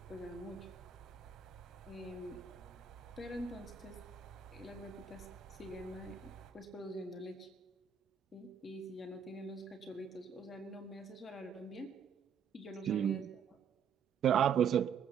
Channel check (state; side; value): quieter; left; 7.2 dB